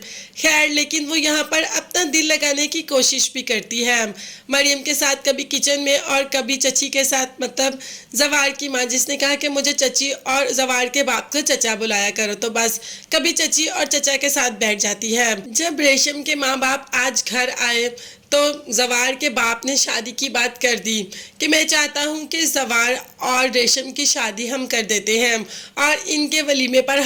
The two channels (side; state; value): both; identical; correlation 1.00